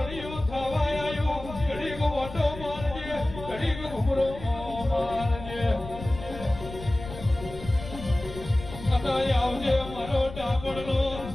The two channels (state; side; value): noise; left; rumble, 12 dB below the sound